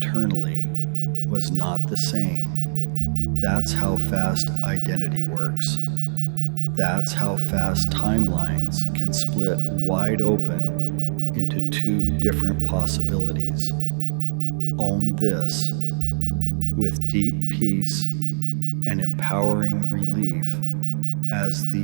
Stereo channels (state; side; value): silent; left; digital silence